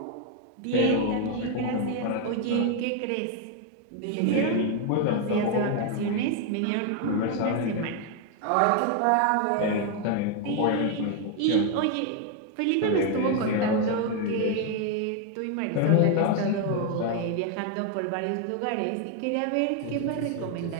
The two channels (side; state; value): both; different; correlation 0.01